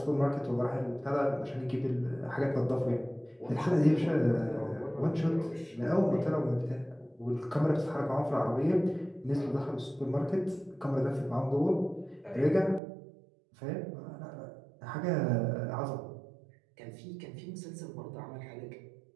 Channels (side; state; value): left; drops out; at 12.8 s